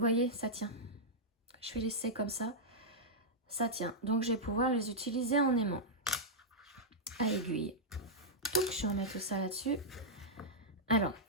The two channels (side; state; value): both; normal; correlation -0.08